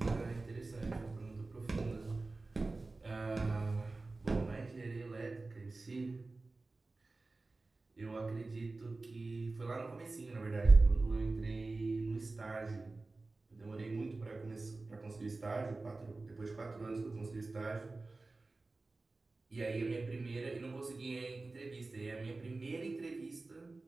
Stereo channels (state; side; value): quieter; left; 3.4 dB